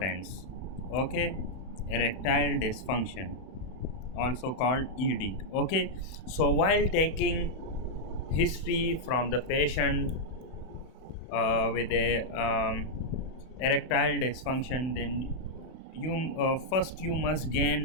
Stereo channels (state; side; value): late; right; 31 ms